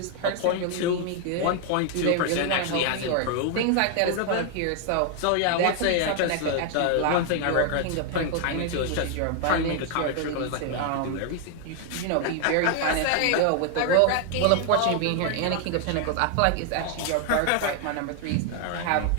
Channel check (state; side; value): different; both; correlation 0.00